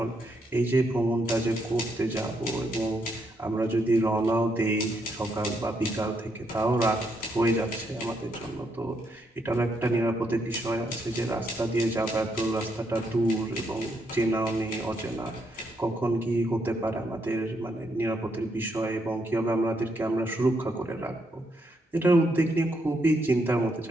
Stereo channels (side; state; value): both; normal; correlation 0.77